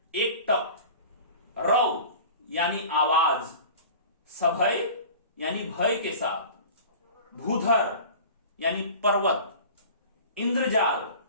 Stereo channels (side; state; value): both; inverted; correlation -0.40